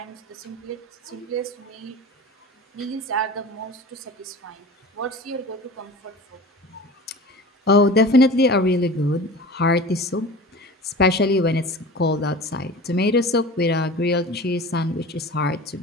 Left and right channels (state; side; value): normal; both; correlation 0.37